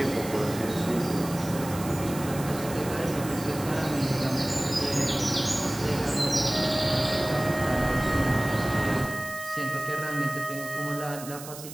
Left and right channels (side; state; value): right; noise; hiss, 13 dB below the sound